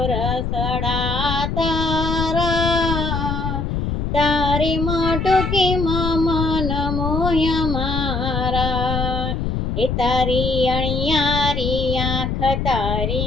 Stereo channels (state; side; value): noise; left; rumble, 1 dB below the sound